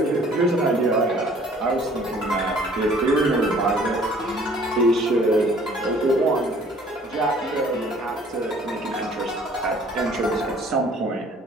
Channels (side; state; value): both; normal; correlation 0.55